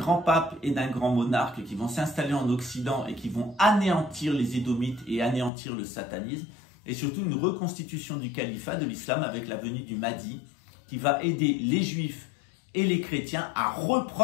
pape et d'un grand monarque qui vont s'installer en Occident et qui vont anéantir les Édomites et anéantir le satanisme. Et surtout, une reconstitution du califat de l'islam avec la venue du Mahdi qui va aider les Juifs et les chrétiens à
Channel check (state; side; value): drops out; right; at 5.5 s